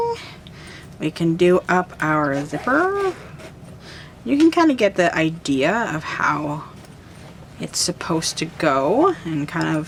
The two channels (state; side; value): identical; both; correlation 1.00